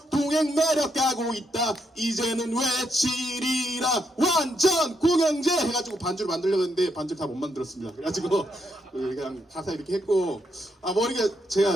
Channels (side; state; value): both; normal; correlation 0.78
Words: 동행 매력 가고 있다 이제는 외치리라 완전 공영제 해가지고 반주를 만들려고 했는데 반주를 다 못 만들었습니다. 그래가지고 그냥 가사 이렇게 했고, 머리가